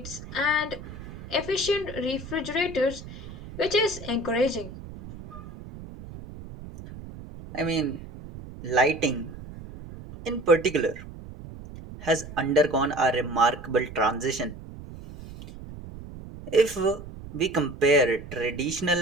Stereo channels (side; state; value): right; noise; rumble, 14 dB below the sound